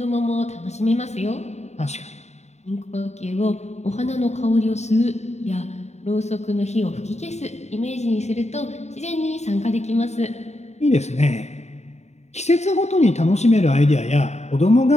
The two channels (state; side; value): late; right; 0.32 ms